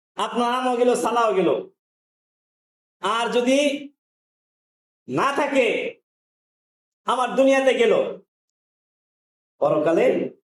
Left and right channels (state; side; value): identical; both; correlation 1.00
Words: আপনার আমও গেল, সালাও গেল। আর যদি না থাকে, আমার দুনিয়াতে গেল, পরকালে